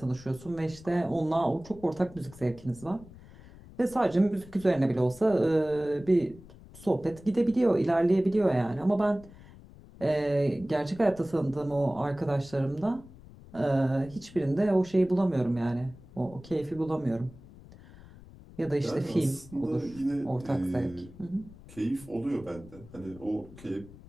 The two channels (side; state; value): left; noise; rumble, 20 dB below the sound